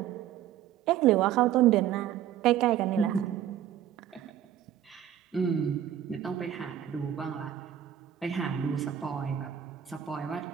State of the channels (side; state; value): left; quieter; 10.6 dB